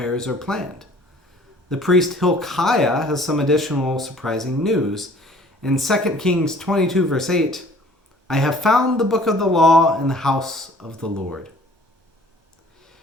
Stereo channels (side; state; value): both; normal; correlation 0.52